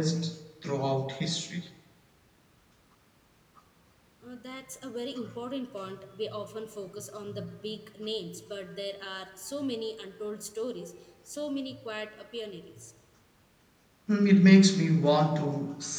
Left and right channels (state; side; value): identical; both; correlation 1.00